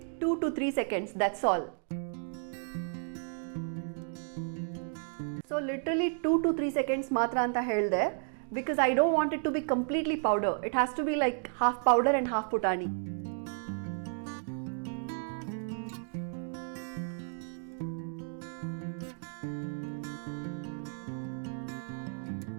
Two to 3 seconds, that's all. So literally 2 to 3 seconds ಮಾತ್ರ ಅಂತ ಹೇಳಿದೆ, because I don't want it to be completely powder. It has to be like half powder and half putani.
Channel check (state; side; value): silent; left; 56 dB below the other